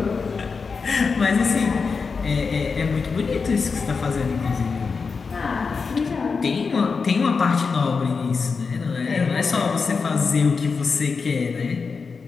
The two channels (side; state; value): right; quieter; 5.0 dB